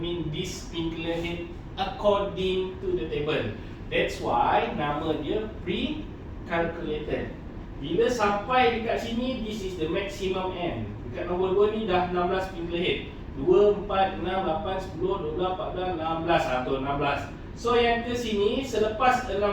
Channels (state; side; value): identical; both; correlation 1.00